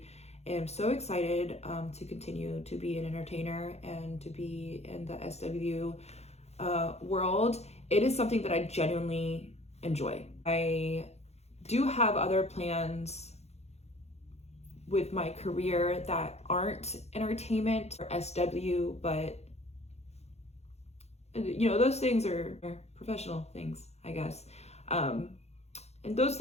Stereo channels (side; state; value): right; late; 0.31 ms